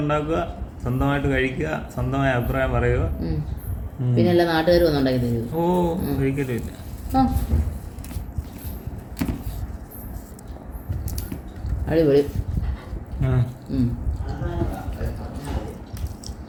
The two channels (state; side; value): identical; both; correlation 1.00